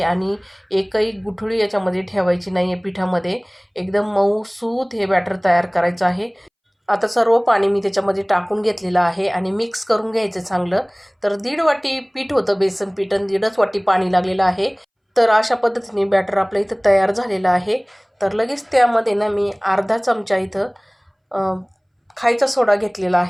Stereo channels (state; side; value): identical; both; correlation 1.00